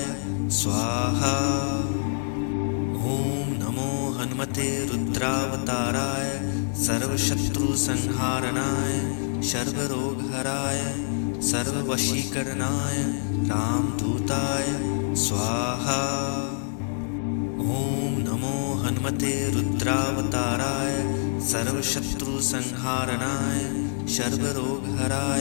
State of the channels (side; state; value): right; silent; digital silence